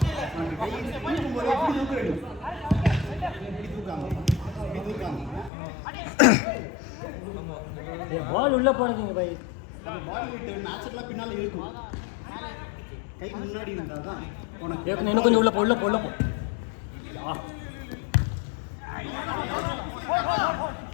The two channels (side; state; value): right; drops out; at 5.5 s